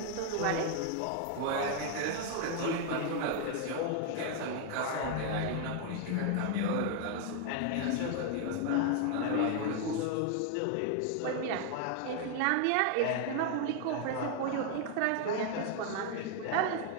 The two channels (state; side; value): different; both; correlation 0.00